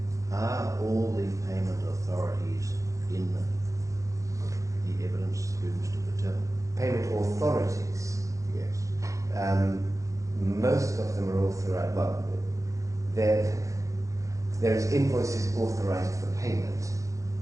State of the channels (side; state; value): left; late; 0.15 ms